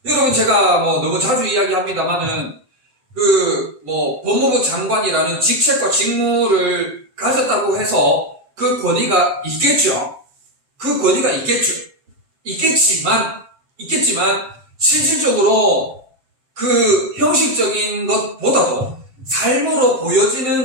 여러분, 제가 너무 자주 이야기합니다만은 법무부 장관이라는 직책과 직무를 가졌다고 해서 그 권위가 있겠죠. 그 권위가 있겠죠. 있겠지만 실질적으로 그 형식적인 것보다도 삶으로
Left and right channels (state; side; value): late; left; 7.7 ms